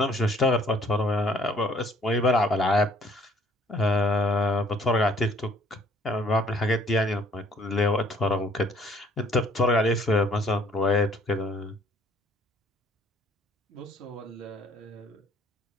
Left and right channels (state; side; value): normal; both; correlation 0.60